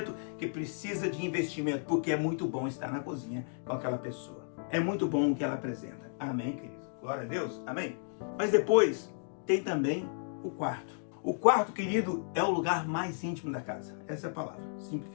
que precisa de investimento, porque é muito bom estar na cozinha com aquela pessoa. É muito bom o que ela apresenta. Amém, querido? Glória a Deus. Amém? Mas depois tem também o quarto. O quarto, querido, é o lugar mais íntimo da casa. Essa é a palavra,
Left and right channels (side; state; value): right; silent; digital silence